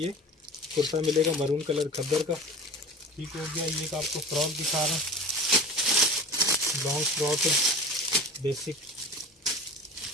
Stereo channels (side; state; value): both; normal; correlation 0.35